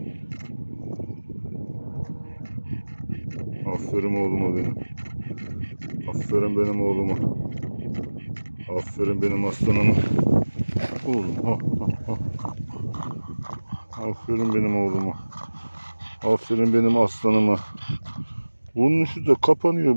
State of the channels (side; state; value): both; inverted; correlation -1.00